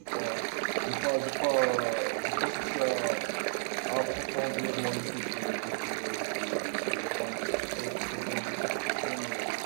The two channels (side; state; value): left; silent; digital silence